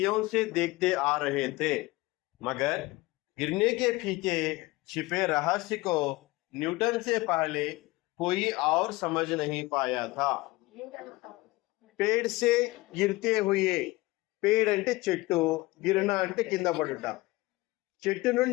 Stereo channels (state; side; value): quieter; right; 20.9 dB